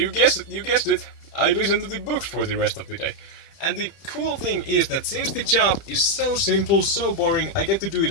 guessed it, I listen to the books for the rest of the day. And the cool thing is that since the job is so simple, so boring, I get to do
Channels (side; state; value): right; late; 30 ms